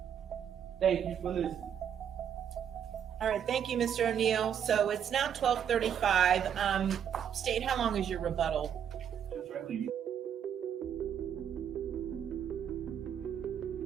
Thank you for listening. All right, thank you, Mr. O'Neal. So it's now 12:35. State, how long is your rebuttal?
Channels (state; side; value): quieter; left; 8.7 dB